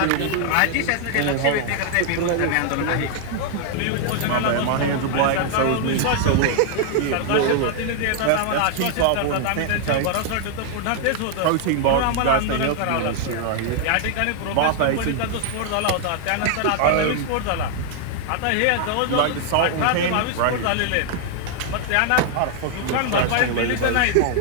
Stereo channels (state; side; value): different; both; correlation 0.00